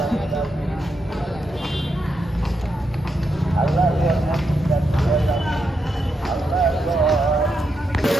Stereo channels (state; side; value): normal; both; correlation 0.83